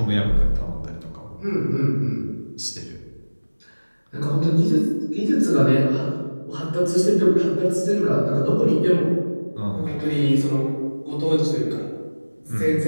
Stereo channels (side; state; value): both; inverted; correlation -1.00